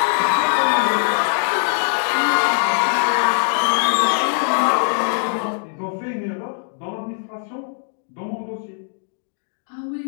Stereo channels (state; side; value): silent; right; digital silence